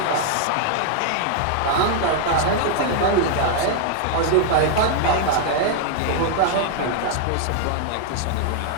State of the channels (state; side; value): different; both; correlation 0.00